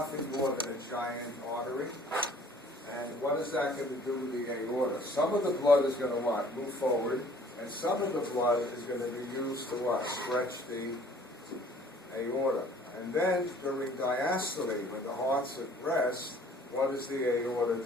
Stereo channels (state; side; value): normal; both; correlation 0.54